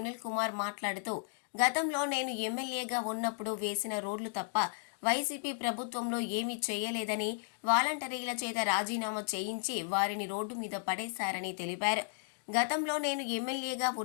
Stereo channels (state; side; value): silent; right; digital silence